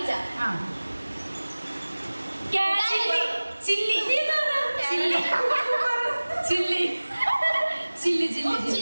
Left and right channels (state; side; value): inverted; both; correlation -1.00